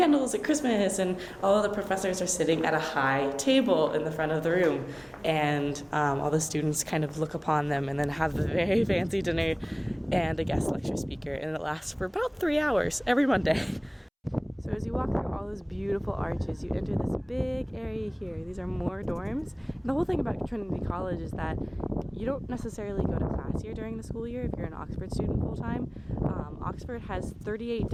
at Christmas and all of the professors are sitting at a high table in the front of the room, and all the students kind of look upon them and then have a very fancy dinner and a guest lecture speaker, and it lasts for about 3 hours every Monday. So as you walk through all those beautiful arches, you enter this big area here. These are more dorms. And the whole thing about Trinity College is that you don't necessarily go to class here during the school year if you're an Oxford student full-time. Oxford has 38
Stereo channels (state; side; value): identical; both; correlation 1.00